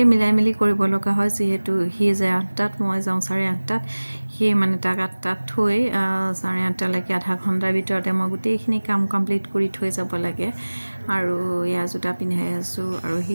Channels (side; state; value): both; inverted; correlation -1.00